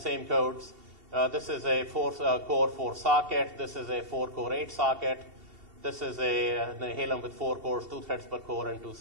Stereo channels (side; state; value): left; late; 2.7 ms